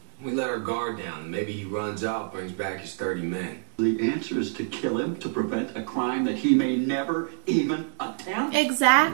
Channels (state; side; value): silent; left; digital silence